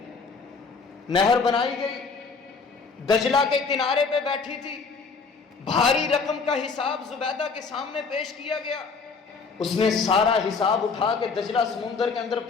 نہر بنائی گئی، دجلہ کے کنارے پہ بیٹھی تھی، بھاری رقم کا حساب زبیدہ کے سامنے پیش کیا گیا. اس نے سارا حساب اٹھا کے دجلہ سمندر کے اندر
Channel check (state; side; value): quieter; right; 4.8 dB